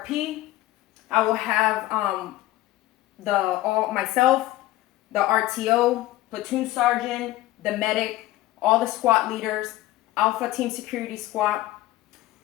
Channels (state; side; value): quieter; right; 16.4 dB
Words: I will have myself, the RTO, platoon sergeant, the medic, all the squad leaders, Alpha Team Security Squad,